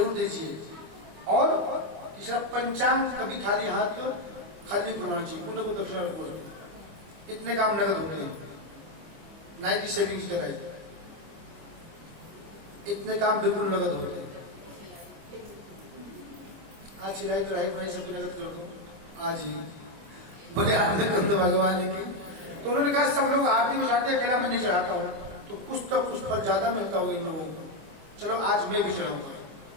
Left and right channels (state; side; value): late; left; 25 ms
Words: दीजिए। और तीसरा, पंचांग कभी खाली हाथ खाली करवाना चाहिए। पुण्य को दक्षिणा रखो, इतने काम नगद होते हैं। नाई की सेविंग कराई, इतने काम बिल्कुल नगद होते हैं। आज सिराई तो राही बनाई सबकी नगद कर दो आज ही, बड़े आनंद कर दो भगवान की। तो उन्होंने कहा सब लोग आरती में चढ़ाते, अकेला मैं नहीं चढ़ाता हूँ, तो कुछ तो कुछ फल ज्यादा मिलता होगा इन लोगों को, चलो आज मैं भी चढ़ाऊंगा।